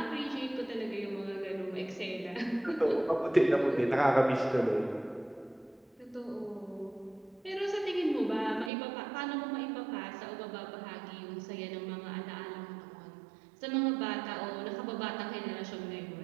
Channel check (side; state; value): left; drops out; at 8.7 s